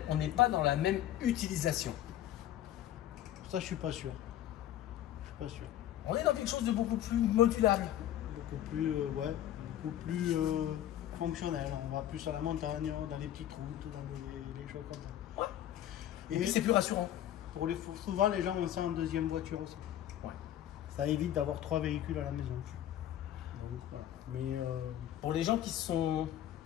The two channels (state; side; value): quieter; right; 12.0 dB